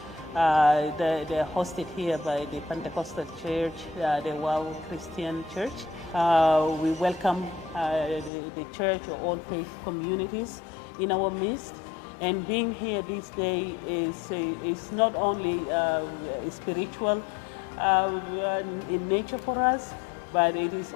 They're hosted here by the Pentecostal Church, the WOW Christian Church. We welcome the church or all faith communities in our midst. And being here this day is not only spiritual in nature for us, but it is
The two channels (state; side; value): drops out; right; at 8.3 s